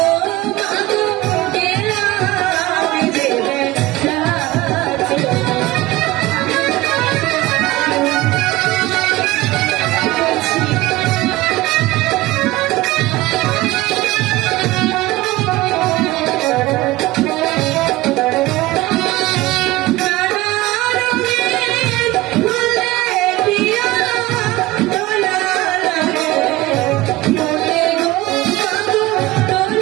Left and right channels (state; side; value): quieter; left; 18.8 dB